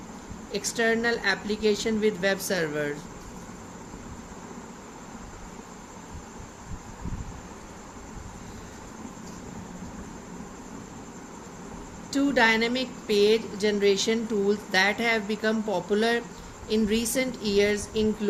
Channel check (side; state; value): both; identical; correlation 1.00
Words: external application with web servers. Two dynamic page generation tools that have become popular in recent years